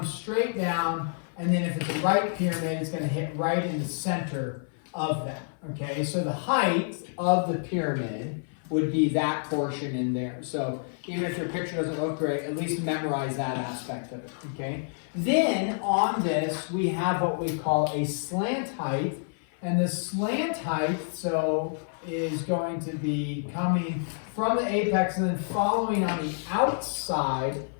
straight down, and then if it's a right pyramid, it's going to hit right in the center of that. Okay, so the height of the pyramid would be that portion in there. So even if your picture doesn't look great, at least memorize that aspect of it, okay? Then on this, we have what we call a slant height. And the slant height, so, is going to be coming from the apex and then following on the outside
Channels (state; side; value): silent; right; 55 dB below the other